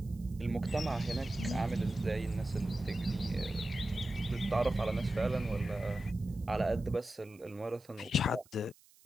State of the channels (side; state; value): right; noise; hiss, 27 dB below the sound